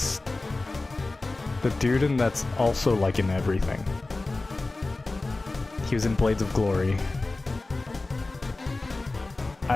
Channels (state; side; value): quieter; right; 3.2 dB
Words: the dude and that's also like in everything. He was in Blades of Glory.